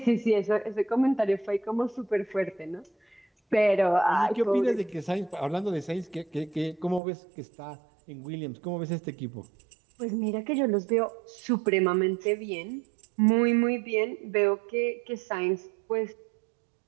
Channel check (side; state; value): left; drops out; at 7.0 s